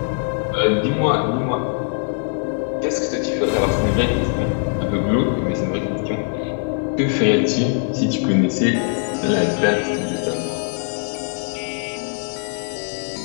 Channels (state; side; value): quieter; right; 39.9 dB